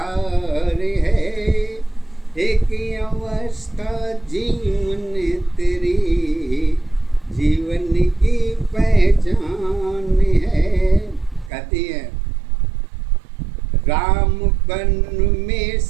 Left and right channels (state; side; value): drops out; left; at 11.5 s